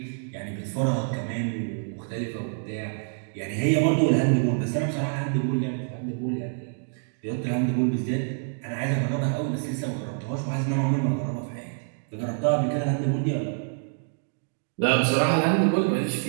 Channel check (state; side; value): silent; left; digital silence